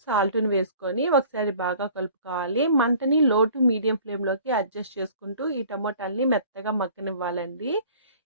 సాల్ట్‌ని వేసుకొని ఒకసారి బాగా కలుపుకోవాలి. మంటని లో టు మీడియం ఫ్లేమ్‌లోకి అడ్జస్ట్ చేసుకుంటూ ఈ టమోటాలని మెత్తగా మగ్గనివ్వాలండి.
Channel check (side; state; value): both; inverted; correlation -0.49